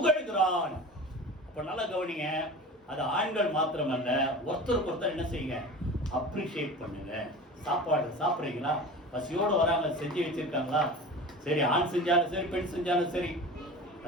அப்ப நல்லா கவனிங்க. அது ஆண்கள் மாத்திரமல்ல, ஒருத்தருக்கு ஒருத்தர் என்ன செய்யுங்க, அப்ரிஷியேட் பண்ணுங்க. சாப்பாடு சாப்பிட்றீங்களா, பசியோடு வராங்க, செஞ்சு வச்சிருக்காங்களா, சரி ஆண் செஞ்சாலும் சரி பெண் செஞ்சாலும் சரி.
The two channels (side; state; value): both; normal; correlation 0.35